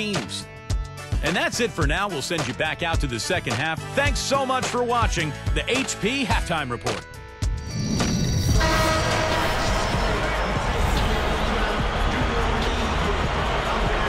And that's it for now. We'll send you back out to the second half. Thanks so much for watching the HP Halftime Report.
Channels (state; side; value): identical; both; correlation 1.00